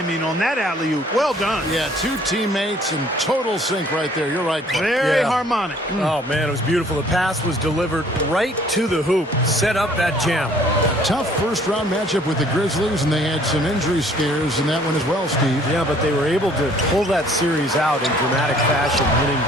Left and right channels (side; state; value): both; normal; correlation 0.58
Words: on that alley-oop? Well done. Yeah, 2 teammates in total sync right there. You're right. Very harmonic. Oh, man, it was beautiful. The pass was delivered right to the hoop. Set up that jam. Tough first-round matchup with the Grizzlies, and they had some injury scares in that one as well, Steve. Yeah, but they were able to pull that series out in dramatic fashion, winning